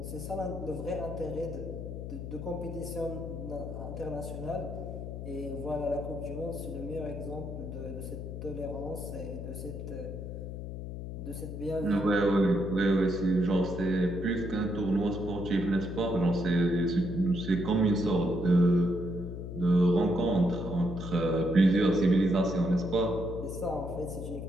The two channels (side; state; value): left; noise; hum, 7 dB below the sound